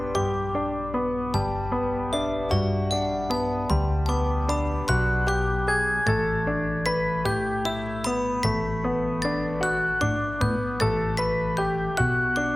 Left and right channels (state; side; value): noise; left; hum, 11 dB below the sound